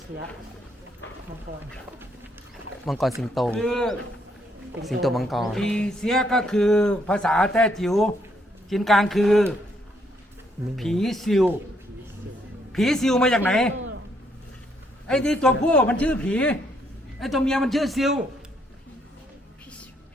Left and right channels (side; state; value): both; normal; correlation 0.72